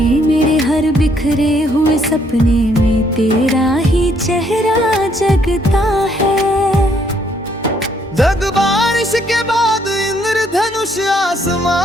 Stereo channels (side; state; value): both; normal; correlation 0.69